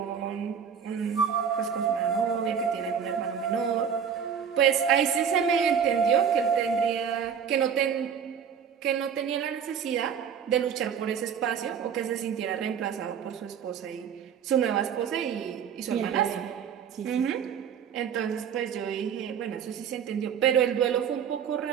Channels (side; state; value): left; quieter; 7.6 dB